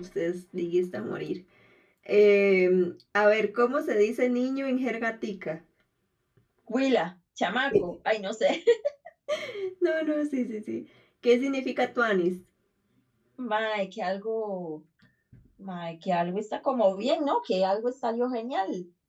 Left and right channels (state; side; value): identical; both; correlation 1.00